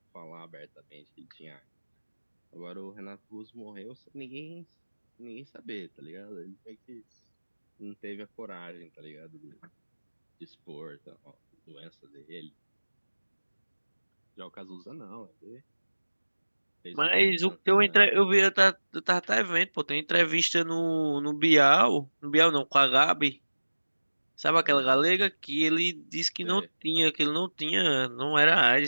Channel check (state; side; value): inverted; both; correlation -1.00